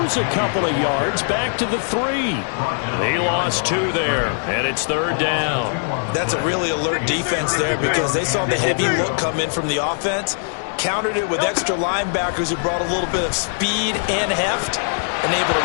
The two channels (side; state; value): right; silent; 65 dB below the other